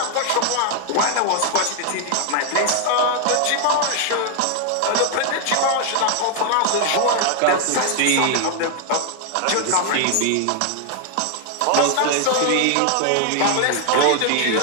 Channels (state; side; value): different; both; correlation 0.00